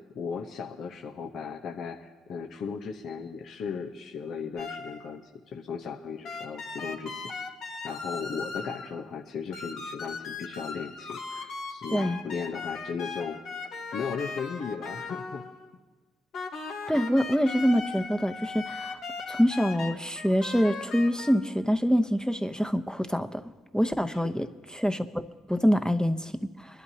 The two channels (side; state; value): both; normal; correlation 0.92